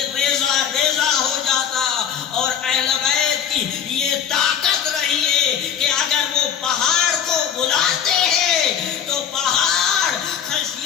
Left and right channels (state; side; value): quieter; right; 8.5 dB